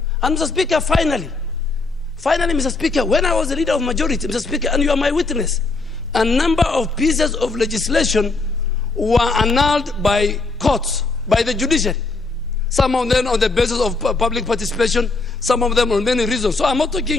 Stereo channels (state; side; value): quieter; right; 3.7 dB